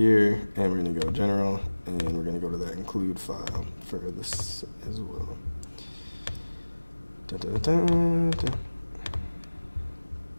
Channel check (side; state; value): both; inverted; correlation -1.00